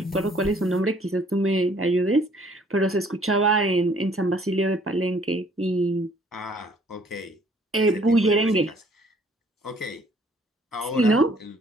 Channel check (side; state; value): both; normal; correlation 0.60